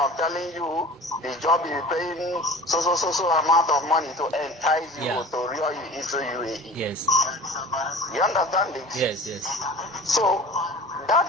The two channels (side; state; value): both; normal; correlation 0.40